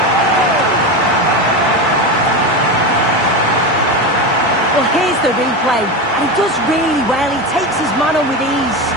Well, here's the replay, and he does really well. He takes his man on with ease,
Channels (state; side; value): normal; both; correlation 0.19